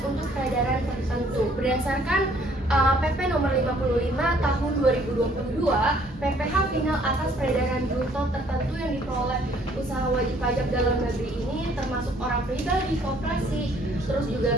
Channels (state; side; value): normal; both; correlation 0.61